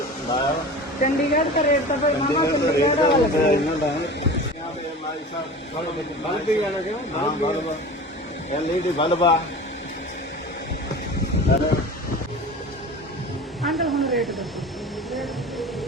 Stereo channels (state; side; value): normal; both; correlation 0.35